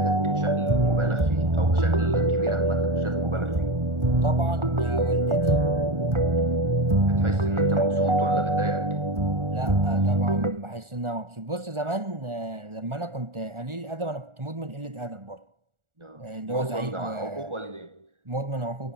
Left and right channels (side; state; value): left; late; 1.4 ms